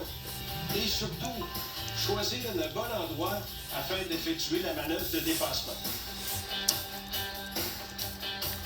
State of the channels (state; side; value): identical; both; correlation 1.00